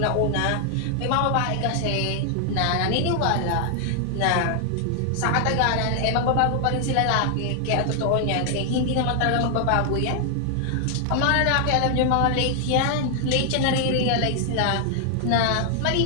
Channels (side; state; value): both; different; correlation 0.00